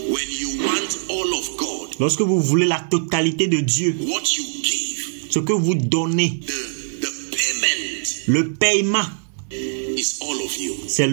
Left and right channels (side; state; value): left; silent; 65 dB below the other